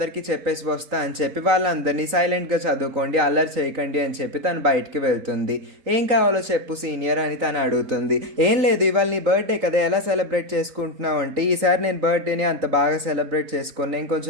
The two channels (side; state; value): left; late; 3.9 ms